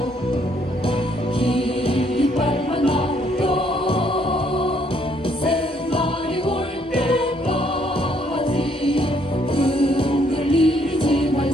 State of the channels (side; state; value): both; normal; correlation 0.68